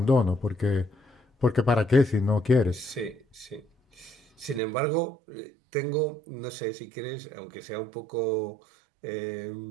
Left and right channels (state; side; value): drops out; left; at 4.6 s